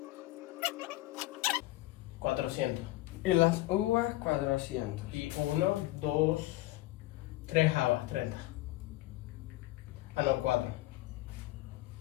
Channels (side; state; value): right; quieter; 17.8 dB